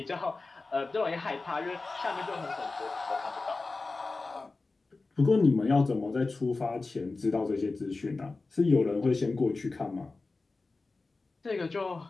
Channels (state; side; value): quieter; right; 3.6 dB